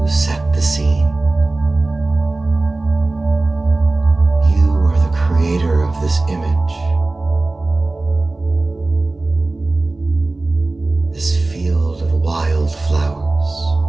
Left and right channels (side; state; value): left; quieter; 3.1 dB